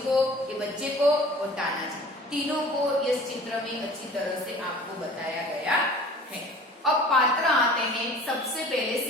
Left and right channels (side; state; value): both; normal; correlation 0.45